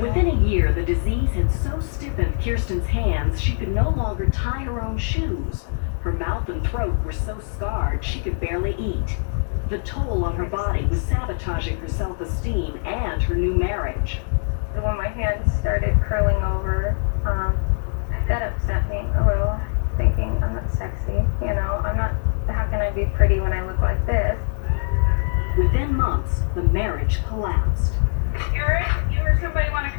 a year, the disease had so stiffened Kirsten's hands she could no longer tie her own shoes. Her mouth and throat were so scarred she could barely eat. The toll on her body was sabotaging her self-esteem and her new marriage. When my hands started curling over, that upset me a little, thinking I'm not sexy, you know, how can I be pretty when I look like this? Within months, the marriage collapsed. Eric, you or somebody want to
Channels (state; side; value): silent; right; digital silence